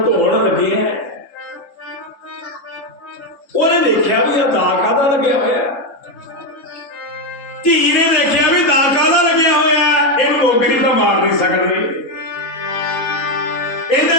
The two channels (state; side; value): late; right; 3.8 ms